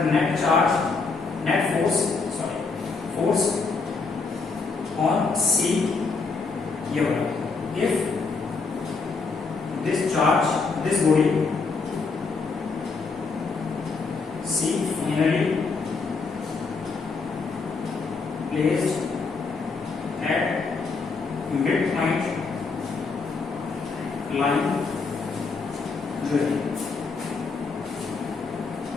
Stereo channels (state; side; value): quieter; right; 4.4 dB